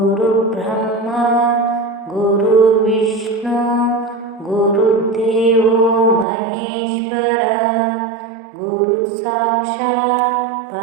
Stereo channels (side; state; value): left; drops out; at 6.2 s